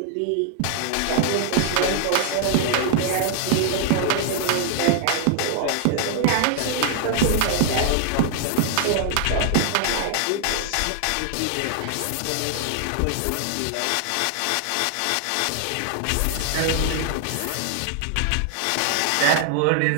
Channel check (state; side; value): different; both; correlation 0.00